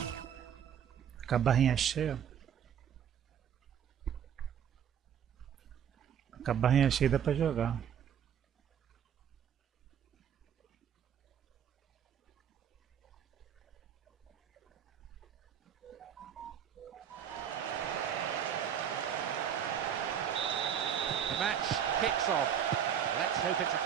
Com a barrinha cheia. Com a barrinha cheia dá pra jogar. The match kicks off. Let's hope it's a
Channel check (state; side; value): quieter; left; 8.8 dB